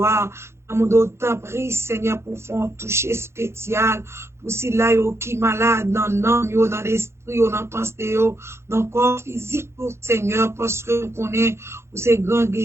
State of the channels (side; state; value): left; late; 0.13 ms